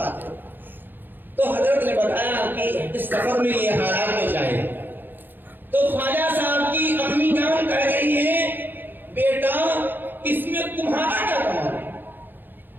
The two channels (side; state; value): left; late; 0.093 ms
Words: ہے؟ تو حضرت نے بتایا کہ اس سفر میں یہ حالات پیش آئے۔ تو خواجہ صاحب کی امی جان کہہ رہی ہے بیٹا اس میں تمہارا کیا کمال ہے؟